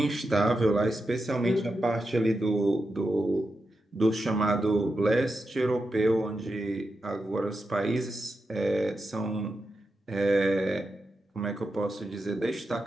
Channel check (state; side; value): normal; both; correlation 0.88